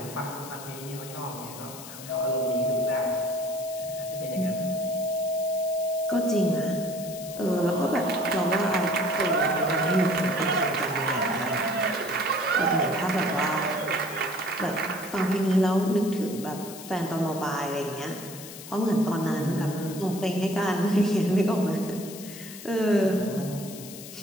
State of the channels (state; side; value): noise; left; hiss, 13 dB below the sound